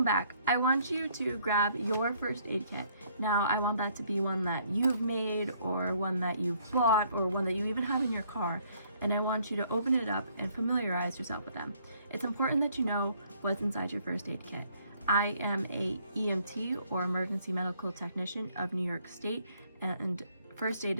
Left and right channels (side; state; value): both; inverted; correlation -0.65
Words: back. I want you to grab your first aid kit. Now I want that to be one that you've made or one that you've bought or one that you even have in your car, and I want you to open it up and familiarize yourself with them. It's important that you know what's inside your first aid kit. I am a EMT or emergency medical technician of New York State, and first aid